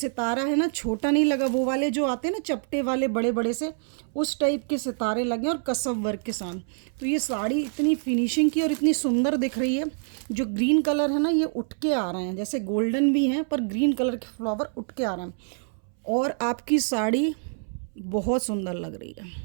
है ना, छोटा नहीं लगा, वो वाले जो आते हैं ना चपटे वाले बड़े बड़े से, उस टाइप के सितारे लगे और कसव वर्क के साथ। तो ये साड़ी इतनी फिनिशिंग की और इतनी सुंदर दिख रही है। जो ग्रीन कलर है ना, ये उठ के आ रहे हैं, जैसे गोल्डन भी हैं पर ग्रीन कलर के फ्लावर उठ के आ रहे हैं। और आपकी साड़ी बहुत सुंदर लग रही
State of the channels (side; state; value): left; silent; 61 dB below the other